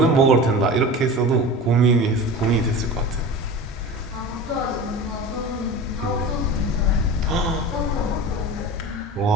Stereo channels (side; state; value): both; normal; correlation 0.32